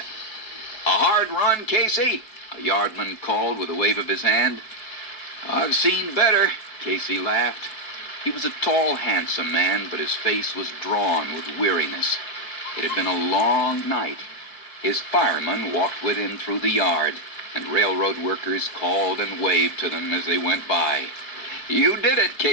"A hard run, Casey?" a yardman called with a wave of his hand. "I've seen better," Casey laughed. He was a tall, handsome man, but his face was drawn with weariness. It had been a long night. His fireman walked with him through the yard, and railroad workers called and waved to them as they went by. "You did it,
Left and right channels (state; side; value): late; right; 4.6 ms